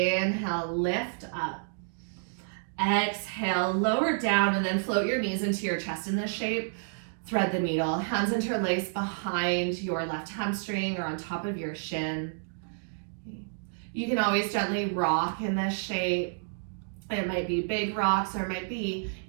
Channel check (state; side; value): silent; left; digital silence